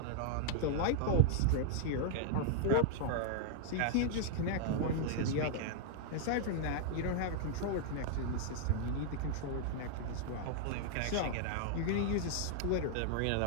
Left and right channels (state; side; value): different; both; correlation -0.01